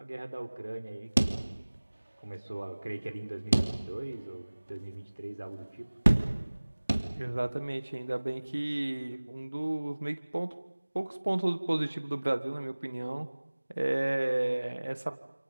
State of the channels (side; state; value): both; inverted; correlation -1.00